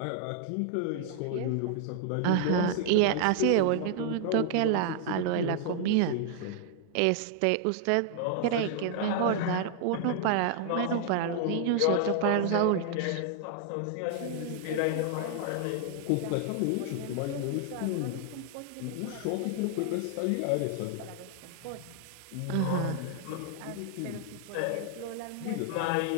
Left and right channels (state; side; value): different; both; correlation 0.00